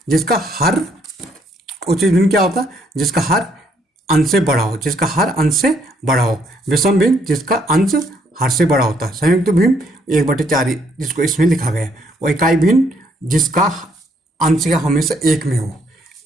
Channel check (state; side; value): normal; both; correlation 0.69